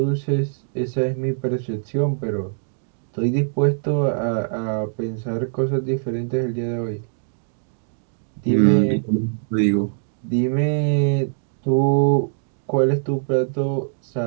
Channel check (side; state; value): left; silent; digital silence